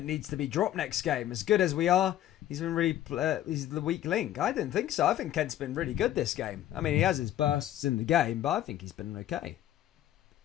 needs to be dropped next game. As good as we are, he's been really he's the weak link. I didn't think so. I think Kent's been really good this game. I mean, he has his bursts in the game, but I think he's been okay.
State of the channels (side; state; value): right; quieter; 12.5 dB